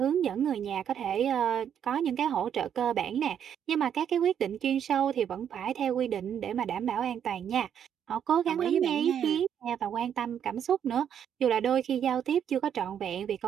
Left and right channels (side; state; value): left; quieter; 8.9 dB